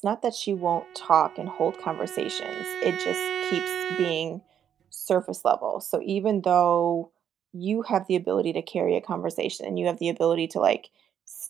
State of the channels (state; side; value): quieter; left; 9.1 dB